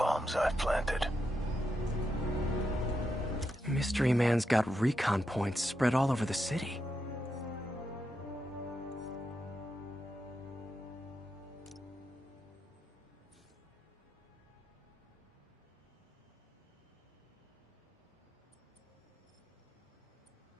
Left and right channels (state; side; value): normal; both; correlation 0.85